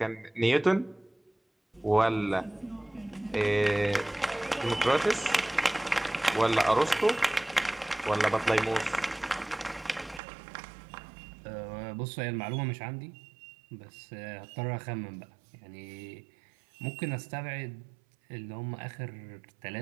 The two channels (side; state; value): left; drops out; at 10.2 s